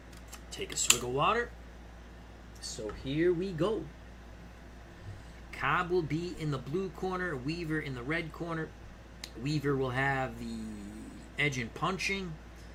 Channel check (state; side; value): identical; both; correlation 1.00